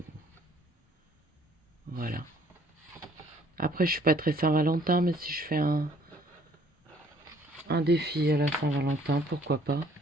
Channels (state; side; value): normal; both; correlation 0.60